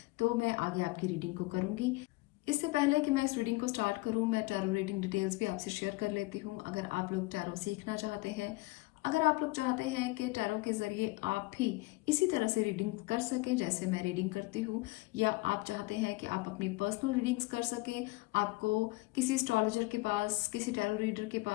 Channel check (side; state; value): right; quieter; 22.7 dB